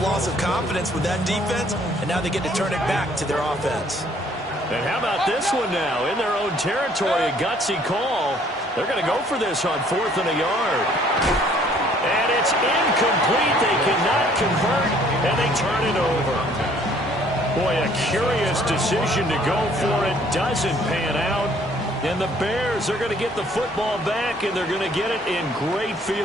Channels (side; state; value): both; normal; correlation 0.60